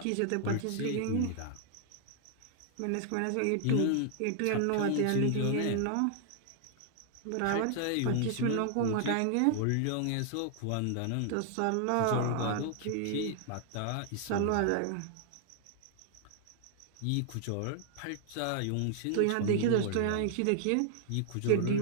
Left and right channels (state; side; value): different; both; correlation 0.00